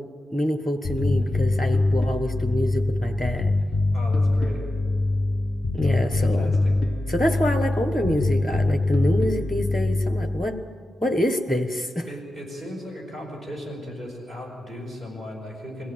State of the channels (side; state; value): both; normal; correlation 0.92